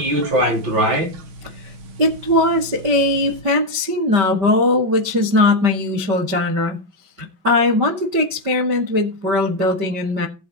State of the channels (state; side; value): late; left; 5.2 ms